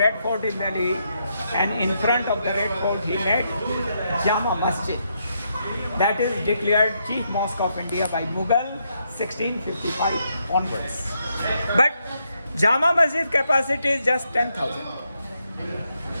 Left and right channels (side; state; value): both; inverted; correlation -0.79